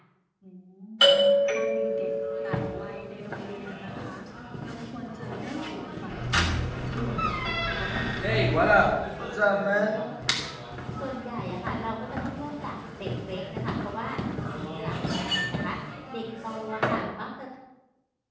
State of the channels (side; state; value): both; identical; correlation 1.00